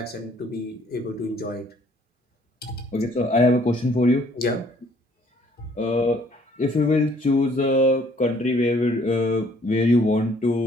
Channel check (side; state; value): both; normal; correlation 0.61